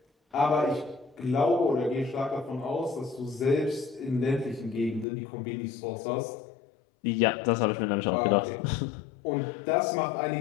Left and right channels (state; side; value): drops out; right; at 5.1 s